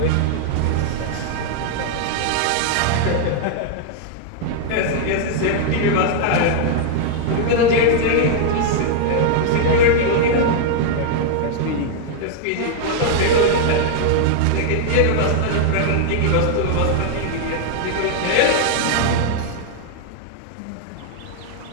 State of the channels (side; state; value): both; different; correlation 0.00